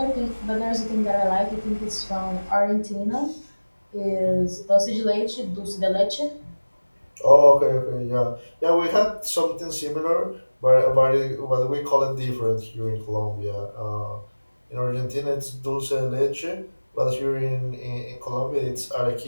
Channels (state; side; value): inverted; both; correlation -1.00